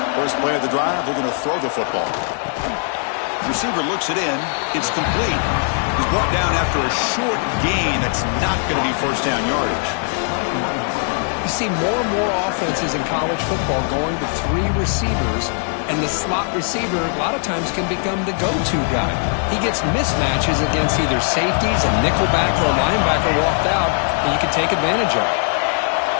First play of the drive, they're going to throw the football. Receiver looks it in. It's complete. He's brought down after a short gain. That's not going to be first down yardage. You see more and more offenses in college football going to 3 receivers, and the slot receiver a lot of times can become the go-to guy. He gets mismatches against either safeties, a nickelback, or a linebacker walked out, and you can take advantage of it.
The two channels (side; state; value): right; silent; 55 dB below the other